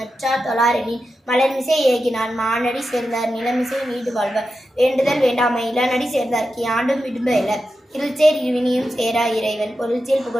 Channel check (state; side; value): normal; both; correlation 0.90